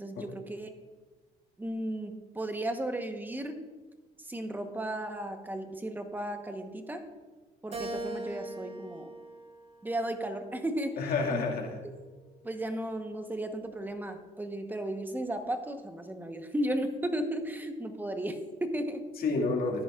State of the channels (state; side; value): normal; both; correlation 0.69